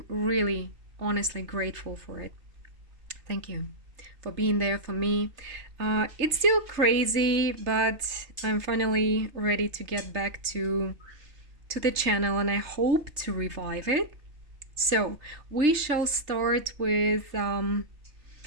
really honestly grateful for it. Thank you for being there for me. It's still crazy, but I'm finally ready to get back to the channel, and I hope to revive it. So we shall start with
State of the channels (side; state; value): left; late; 3.3 ms